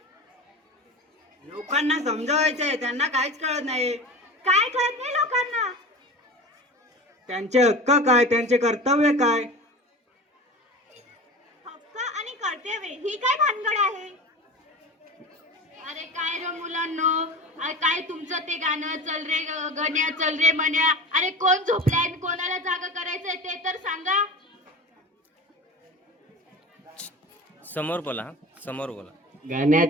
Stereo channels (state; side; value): normal; both; correlation 0.33